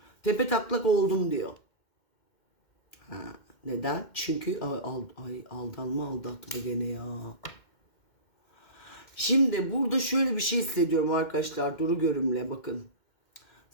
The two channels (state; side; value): late; right; 2.1 ms